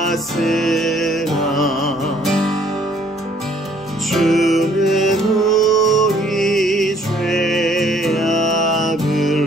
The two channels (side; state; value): both; normal; correlation 0.61